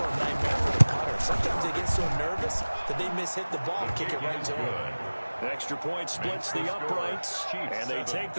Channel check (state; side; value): inverted; both; correlation -1.00